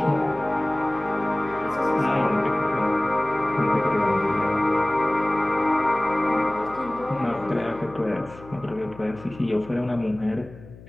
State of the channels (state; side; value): noise; left; hum, 19 dB below the sound